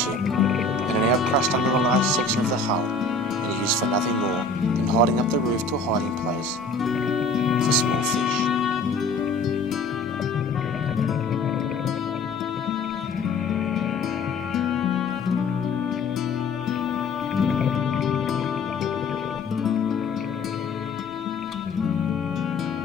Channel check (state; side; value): quieter; right; 3.5 dB